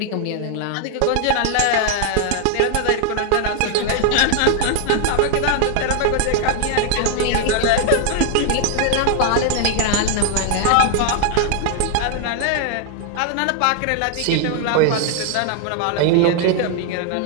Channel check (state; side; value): different; both; correlation 0.00